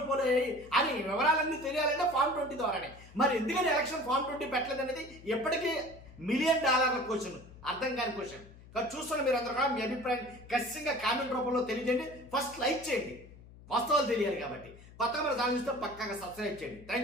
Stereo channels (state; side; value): noise; left; hum, 20 dB below the sound